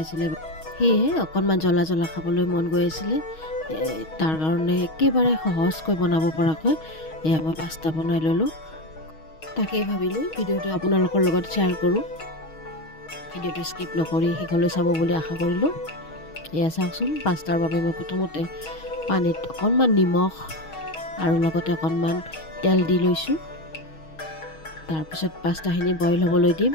আছিলে, সেয়েহে অকণমান জ্বলা খাবলৈ মন গৈ আছিলে। তাৰ কাৰণে একেবাৰে সহজকৈ বনাব পৰাকৈ এয়া মই পাস্তা বনাই ল'লোঁ। তাকেই ভাবিলোঁ ভিডিঅ'টো আপোনালোকৰ লগত শ্বেয়াৰ কৰোঁ। ভিডিঅ'টো স্কিপ নকৰি শেষলৈ চাব বুলি আশা কৰিলোঁ। এয়া চাওকচোন, পাস্তাৰ বাবে মই প্ৰথমতে পানীত অকণমান নিমখ আৰু লগতে অকণমান তেল দি লৈছোঁ। তাৰপিছত পাস্তাখিনি বইল হ'বলৈ দিম।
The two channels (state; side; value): late; right; 6.3 ms